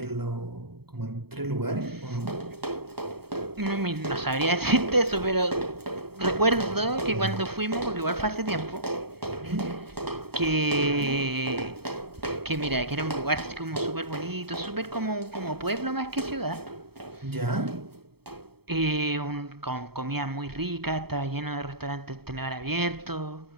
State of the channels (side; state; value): left; late; 0.96 ms